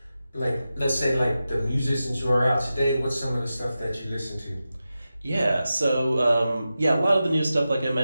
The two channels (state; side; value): inverted; both; correlation -0.92